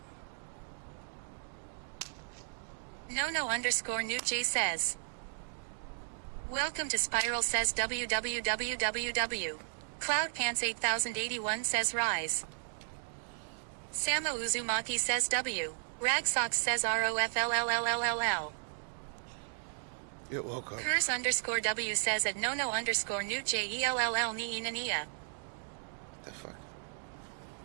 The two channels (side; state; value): left; silent; digital silence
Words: No_Nuj says, welcome to Spiral says www. Cloud Pants 8081 says rise. Samo Uzumaki says W. Ragsox says ROFLLLLL. It woke up. Curse_W says at No_Nuj ELLL Nia. The fuck?